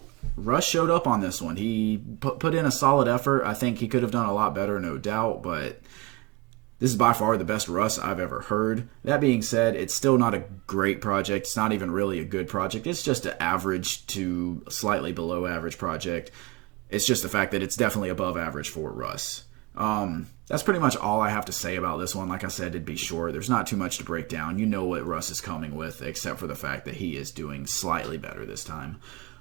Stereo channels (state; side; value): quieter; left; 22.2 dB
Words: Russ showed up on this one. He put in a solid effort. I think he could have done a lot better, no doubt, but this is by far the best Russ I've ever heard. That being said, it's still not a great project. It's not even really a good project. It's just an average to slightly below average project. It's just the fact that it's definitely above average for Russ. that's pretty much all I have to say about this one. Like I said, it'd be short. There's not too much to break down. You know what Russ is coming with, except for the fact that he is doing slightly better this time.